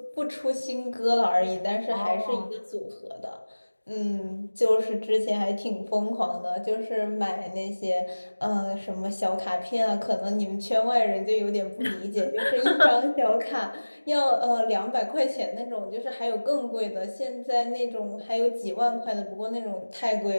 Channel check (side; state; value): both; inverted; correlation -1.00